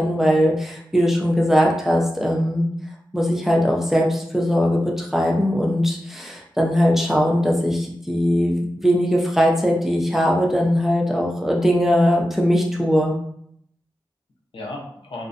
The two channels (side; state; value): both; normal; correlation 0.92